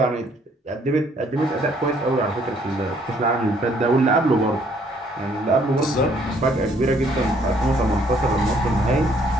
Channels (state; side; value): normal; both; correlation 0.64